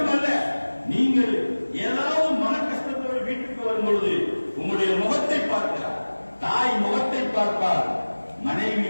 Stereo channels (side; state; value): both; inverted; correlation -1.00